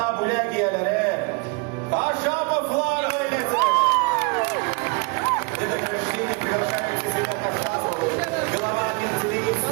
bo'lak egalari Kashapovlar oilasi. Это прощение приглашается себя Кашапову, глава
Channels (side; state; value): left; quieter; 30.2 dB